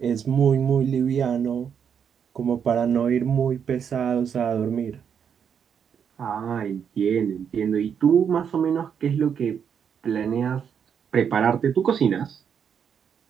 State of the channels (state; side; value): quieter; left; 7.6 dB